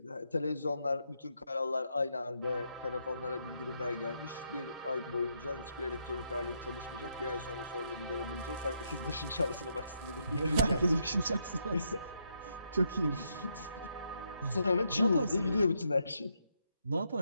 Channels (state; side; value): inverted; both; correlation -0.77